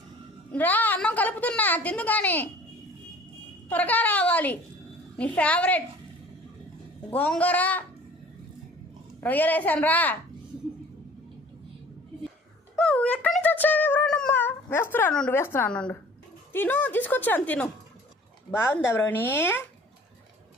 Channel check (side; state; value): both; normal; correlation 0.49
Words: రా, అన్నం కలుపుతున్నా, తిందు కానీ త్వరగా రావాలి. నీ ఫేవరెట్ గోంగూర రొయ్యలు వేసాను రా. ఎక్కడి నుంచి వచ్చావు బ్రౌనమ్మా? వేస్తున్నాను. తిను, తీసుకొచ్చాను తిను. బాగుందా బ్రౌని?